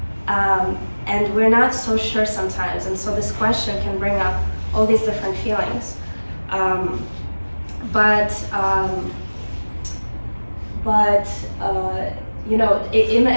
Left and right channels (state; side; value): inverted; both; correlation -1.00